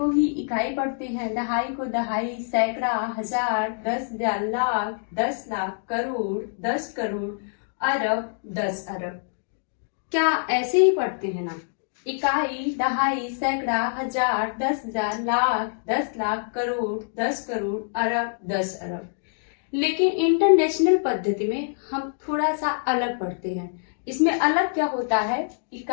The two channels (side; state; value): right; silent; digital silence